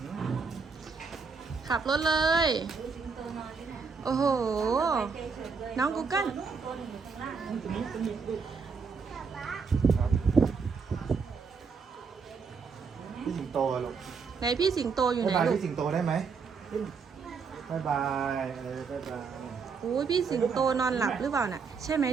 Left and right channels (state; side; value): quieter; left; 5.3 dB